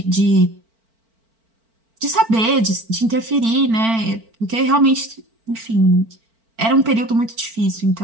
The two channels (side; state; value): left; late; 4.4 ms